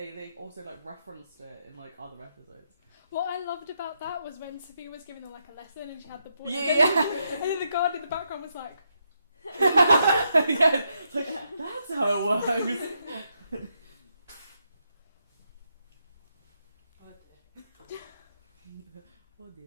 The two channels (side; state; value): both; inverted; correlation -0.80